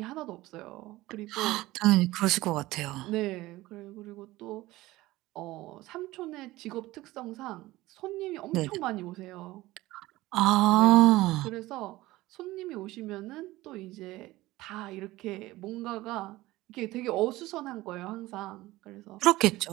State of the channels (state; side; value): quieter; left; 18.1 dB